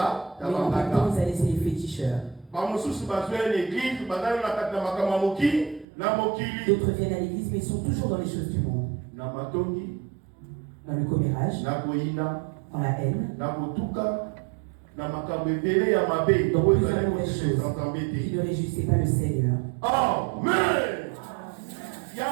même temps, ils allaient chez les féticheurs. D'autres viennent à l'église, mais ils sont toujours dans les choses du monde. Dans le commérage, dans la haine, dans plusieurs mauvaises choses qui ne réjouissaient pas le Seigneur. Amen.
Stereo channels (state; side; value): drops out; left; at 5.9 s